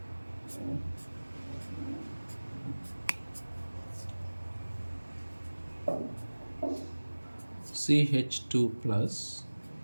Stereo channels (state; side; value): inverted; both; correlation -1.00